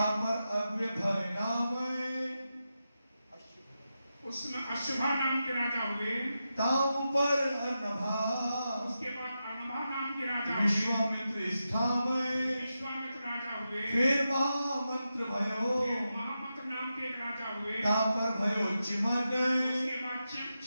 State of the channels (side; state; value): both; inverted; correlation -0.89